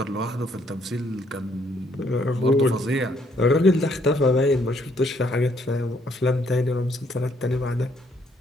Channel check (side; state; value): both; normal; correlation 0.68